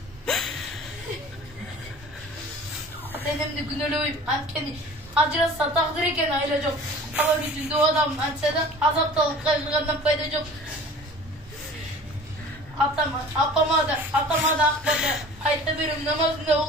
Ата-энемди күнөөлөбөйм, анткени ажыраса тагдыр экен, айла жок. Ала жүзүндө адам антса да азапталып кайгыргандан пайда жок. Апама да акбада айта берем, намазында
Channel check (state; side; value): normal; both; correlation 0.44